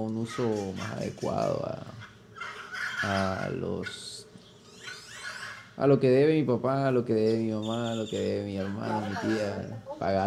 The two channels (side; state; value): both; identical; correlation 1.00